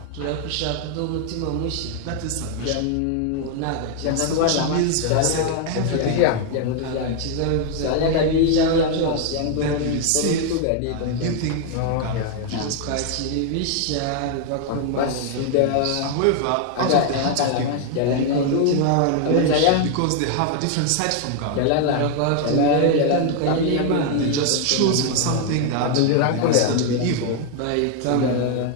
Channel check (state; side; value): different; both; correlation 0.00